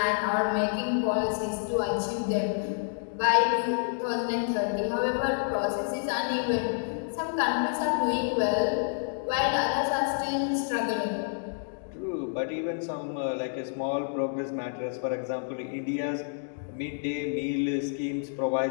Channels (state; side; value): silent; right; digital silence